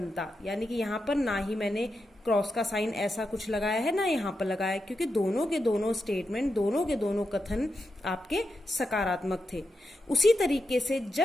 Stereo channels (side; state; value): both; normal; correlation 0.87